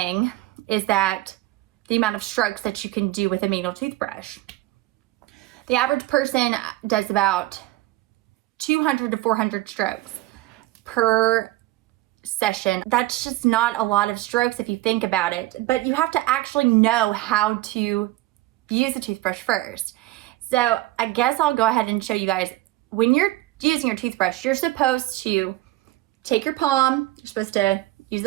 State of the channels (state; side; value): quieter; left; 17.5 dB